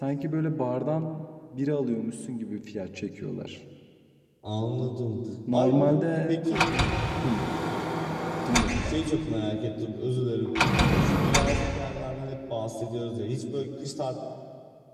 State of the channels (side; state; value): both; identical; correlation 1.00